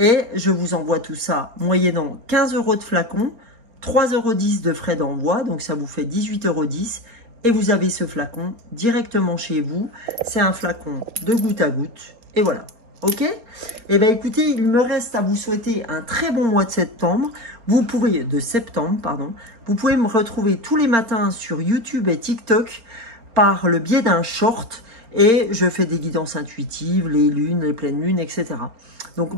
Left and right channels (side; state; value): left; late; 4.4 ms